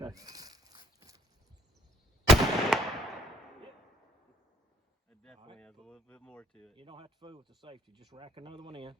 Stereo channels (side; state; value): both; normal; correlation 0.61